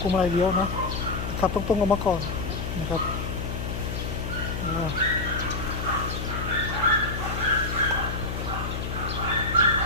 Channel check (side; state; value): left; noise; hum, 4 dB below the sound